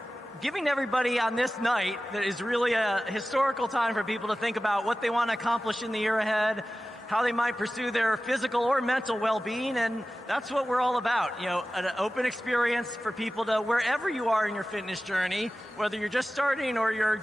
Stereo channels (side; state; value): both; normal; correlation 0.96